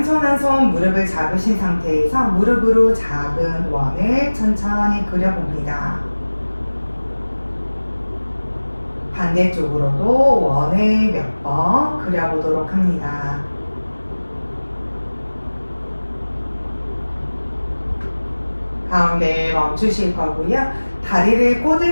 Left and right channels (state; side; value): inverted; both; correlation -1.00